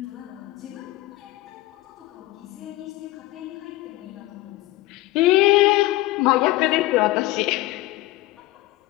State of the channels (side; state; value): right; quieter; 18.1 dB